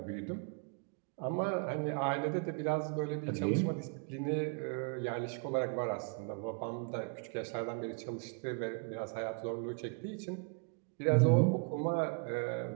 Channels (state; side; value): quieter; left; 38.4 dB